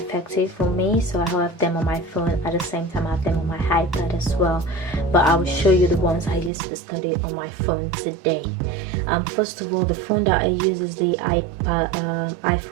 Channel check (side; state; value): left; drops out; at 6.5 s